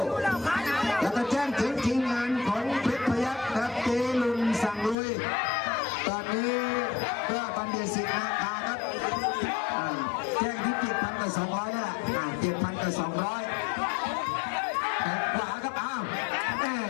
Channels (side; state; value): right; drops out; at 5.0 s